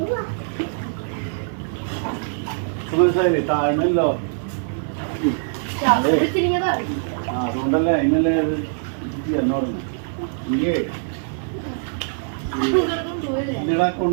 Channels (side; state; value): left; silent; 64 dB below the other